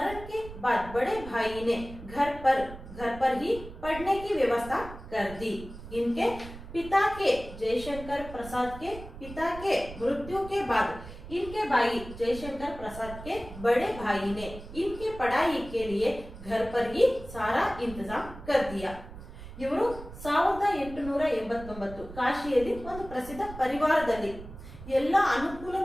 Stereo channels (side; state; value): right; noise; rumble, 14 dB below the sound